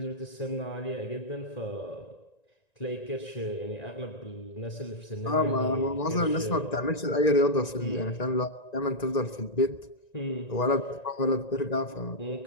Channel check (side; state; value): right; late; 1.9 ms